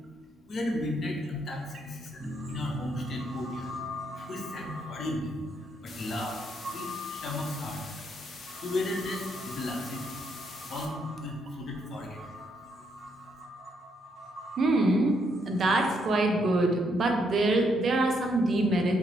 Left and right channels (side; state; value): both; normal; correlation 0.75